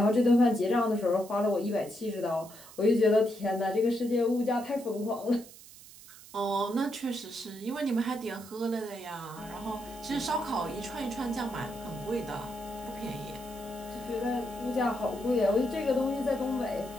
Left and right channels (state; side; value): noise; right; hiss, 19 dB below the sound